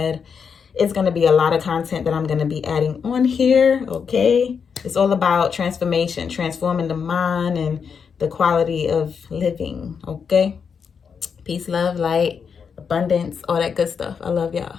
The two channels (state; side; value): quieter; right; 6.4 dB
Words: It's going to be a lot of content that I'm going to be adding on here, okay? It's all about transformation, transforming the mind and the quality of living, okay? Peace, love, light, abundance, all that good stuff. I love y'all.